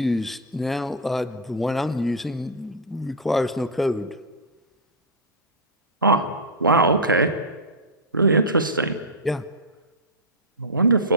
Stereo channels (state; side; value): normal; both; correlation -0.07